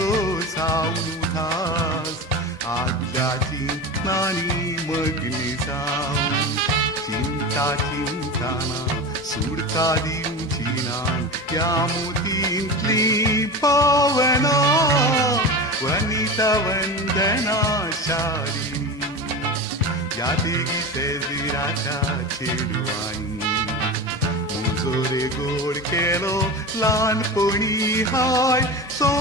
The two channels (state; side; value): normal; both; correlation 0.26